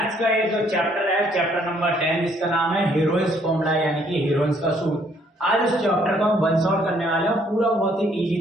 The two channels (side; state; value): both; normal; correlation 0.65